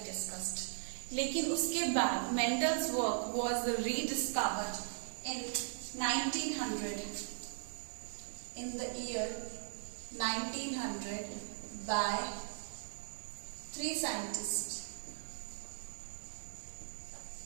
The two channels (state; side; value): silent; left; 52 dB below the other